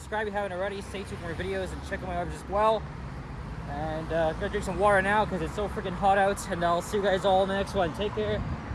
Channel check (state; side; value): identical; both; correlation 1.00